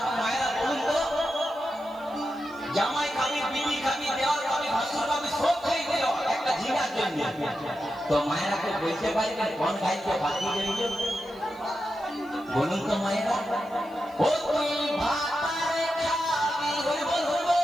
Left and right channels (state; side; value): noise; left; hiss, 28 dB below the sound